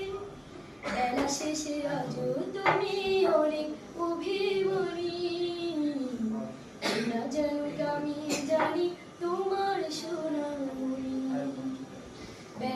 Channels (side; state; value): both; identical; correlation 1.00